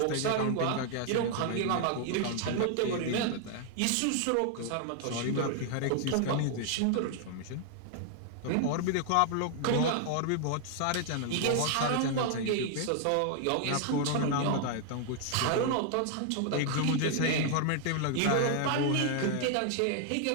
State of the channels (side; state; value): both; different; correlation 0.00